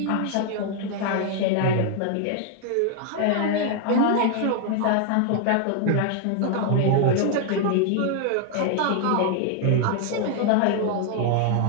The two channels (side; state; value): both; different; correlation 0.00